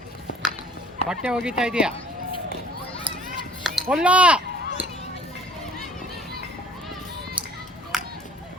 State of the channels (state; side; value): normal; both; correlation 0.52